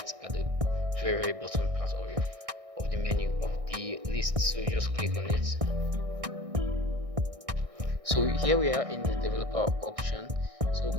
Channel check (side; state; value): left; late; 1.6 ms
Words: at the very bottom part of the menu of the list. So you just click on it. So here we are in the developer option. So